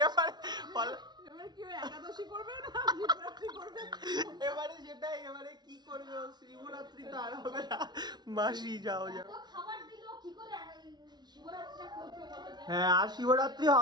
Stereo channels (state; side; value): late; left; 0.20 ms